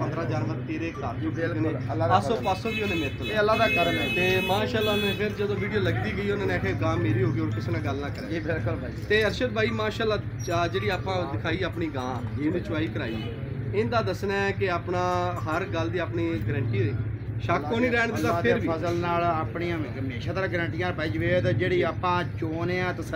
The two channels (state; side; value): identical; both; correlation 1.00